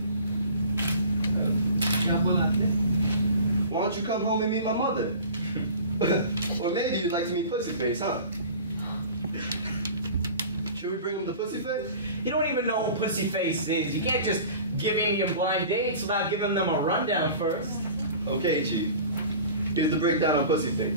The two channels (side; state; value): both; inverted; correlation -0.41